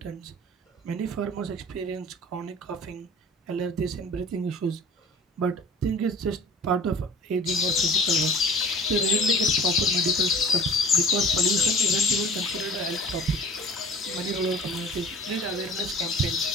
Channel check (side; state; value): both; normal; correlation 0.45